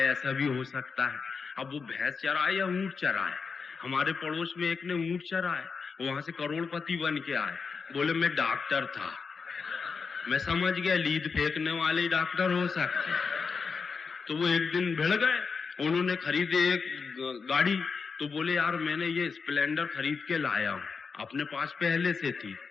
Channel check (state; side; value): quieter; right; 5.2 dB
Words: ऐसा भी हो सकता है। अब वो भैंस चराए या ऊंट चराए। हमारे पड़ोस में एक ने ऊंट चराए, वहां से करोड़पति बन के आए। बोले मैं डॉक्टर था। मैं समझ गया लीद फेंकने वाले डॉक्टर हो सकते। तो वो एक दिन भिड़ गए, उन्होंने खरीदे एक गाड़ी। तो बोले यार मैंने ये स्प्लेंडर खरीद के लाया हूं, अपने पास पहले से थी।